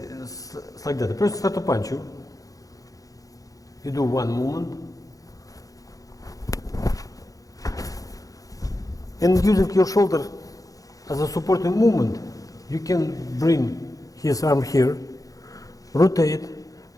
like that. The person starts to punch you. You do one movement. And using your shoulder as a supporting movement, you can bring his arm here, rotate.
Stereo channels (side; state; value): right; late; 0.17 ms